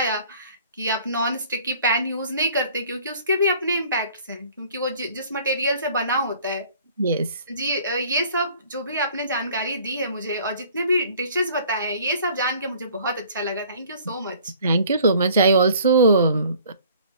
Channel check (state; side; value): inverted; both; correlation -0.53